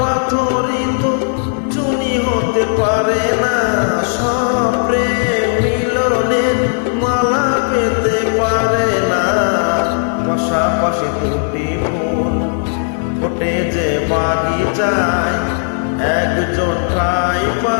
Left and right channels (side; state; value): right; silent; 69 dB below the other